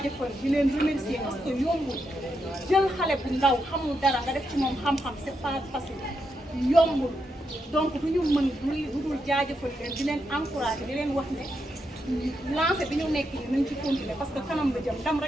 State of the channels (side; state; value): both; normal; correlation 0.83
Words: di leen remercier parce que yombul jël xale bu ndaw xamul dara nga def ci moom xam-xam c'est pas facile yombul donc du ñu mën du dul jaajëfal leen di leen encourager di leen wax ne lancé bi ñu nekk nii nañ ci continuer parce que kanam la jëm ndam